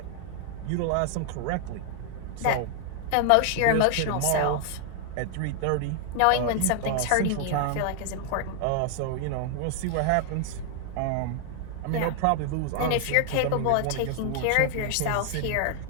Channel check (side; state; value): both; different; correlation 0.00